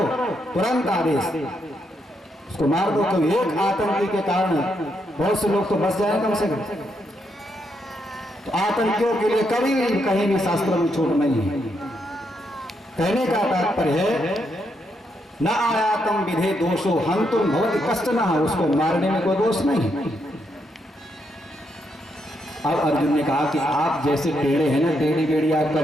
तुरंत आदेश उसको मार दो। तो एक आतंकी के कारण बहुत से लोग तो बच जाए कम से कम। तो आतंकियों के लिए कभी भी कहीं भी शास्त्र में छूट नहीं है। कहने का तात्पर्य है न आयातम विधे दोषो हंतुम भवति कष्ट न, उसको मारने में कोई दोष नहीं। अब अर्जुन ने कहा कि आप जैसे टेढ़े हैं ना, टेढ़ी बेड़ी, आपका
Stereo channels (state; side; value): normal; both; correlation 0.79